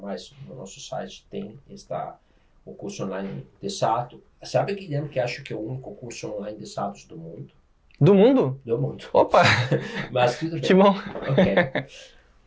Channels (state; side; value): identical; both; correlation 1.00